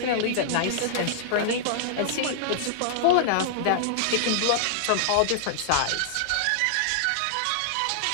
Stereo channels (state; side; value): different; both; correlation -0.01